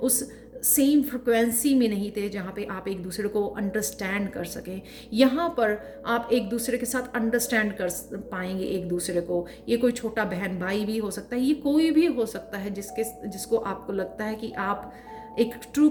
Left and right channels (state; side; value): identical; both; correlation 1.00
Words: सेम फ्रिक्वेंसी में नहीं थे जहाँ पे आप एक दूसरे को अंडरस्टैंड कर सकें। यहाँ पर आप एक दूसरे के साथ अंडरस्टैंड कर पाएंगे एक दूसरे को। ये कोई छोटा बहन भाई भी हो सकता है, ये कोई भी हो सकता है जिसको आपको लगता है कि आप एक ट्रू